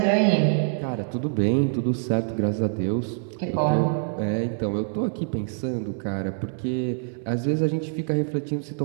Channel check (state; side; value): silent; left; 60 dB below the other